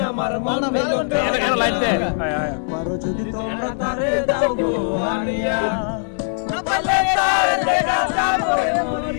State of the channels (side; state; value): right; silent; digital silence